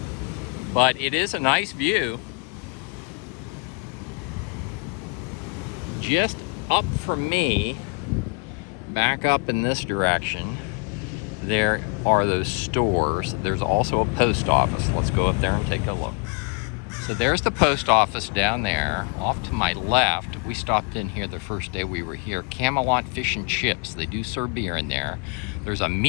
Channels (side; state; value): right; quieter; 34.4 dB